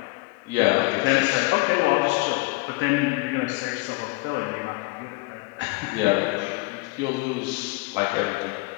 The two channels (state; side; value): quieter; right; 24.8 dB